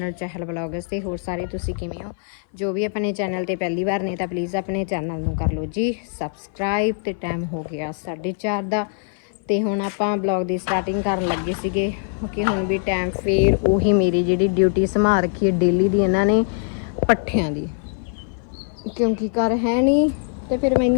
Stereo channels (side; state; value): right; silent; 58 dB below the other